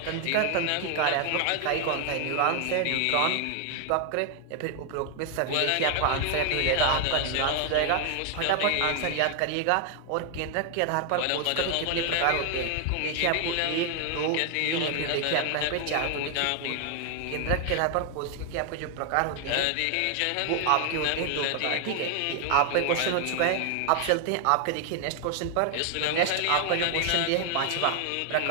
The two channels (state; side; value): different; both; correlation 0.00